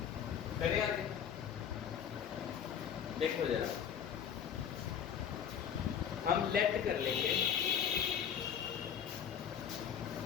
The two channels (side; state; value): right; quieter; 8.4 dB